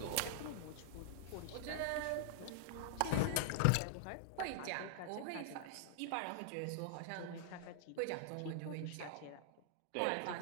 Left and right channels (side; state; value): both; different; correlation -0.01